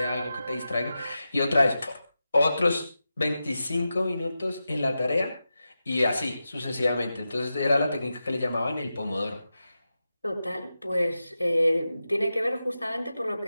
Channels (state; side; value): inverted; both; correlation -0.92